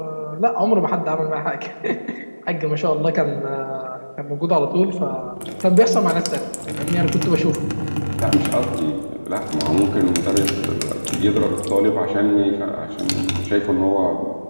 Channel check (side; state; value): both; inverted; correlation -1.00